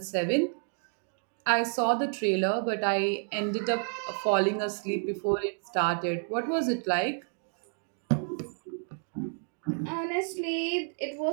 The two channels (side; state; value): left; silent; 58 dB below the other